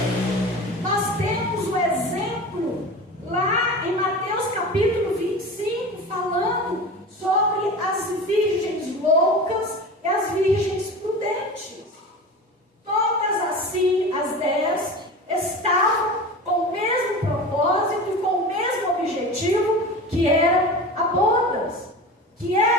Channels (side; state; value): both; normal; correlation 0.32